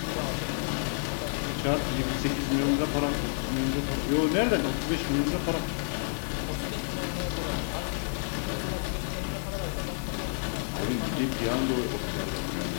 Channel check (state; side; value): silent; right; digital silence